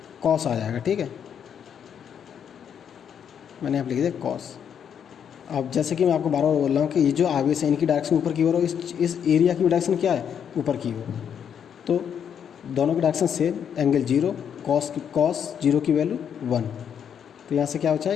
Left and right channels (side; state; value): right; quieter; 8.2 dB